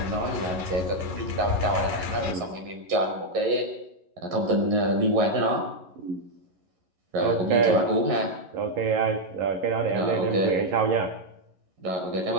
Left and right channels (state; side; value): late; left; 11 ms